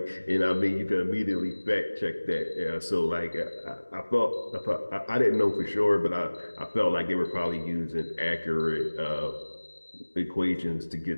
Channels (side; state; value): both; inverted; correlation -1.00